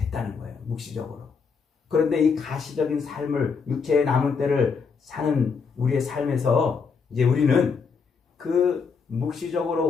거예요. 묵시적으로. 그런데 이 가시적인 삶을 육체의 남은 때를 사는 우리의 삶에서 이제 우리는 그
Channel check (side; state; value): right; quieter; 5.5 dB